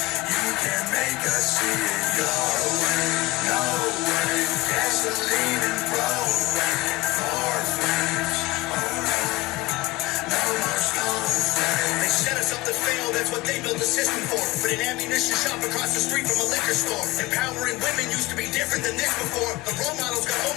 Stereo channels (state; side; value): quieter; right; 20.2 dB